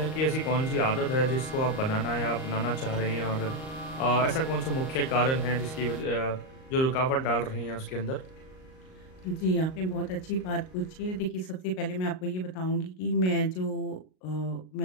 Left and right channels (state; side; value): late; right; 38 ms